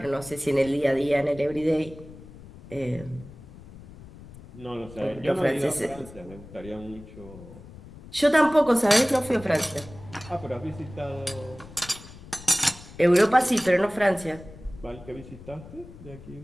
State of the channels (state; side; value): noise; left; rumble, 18 dB below the sound